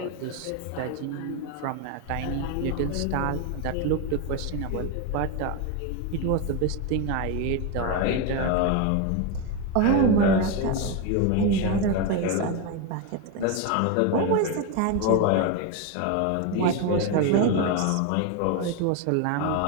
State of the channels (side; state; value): both; different; correlation 0.03